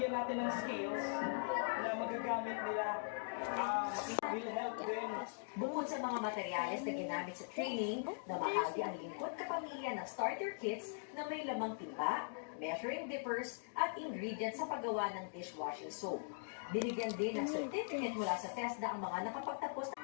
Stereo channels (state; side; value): silent; right; digital silence